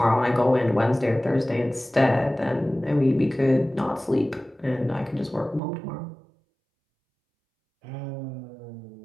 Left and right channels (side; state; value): left; drops out; at 5.6 s